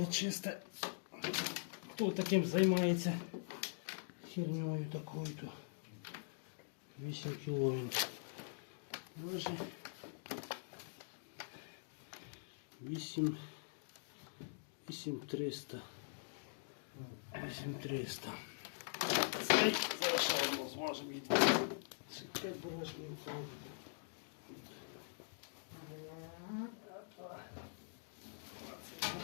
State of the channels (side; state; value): right; silent; digital silence